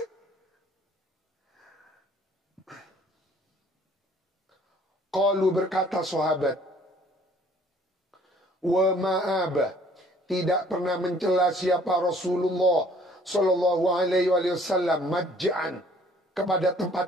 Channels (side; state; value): both; normal; correlation 0.57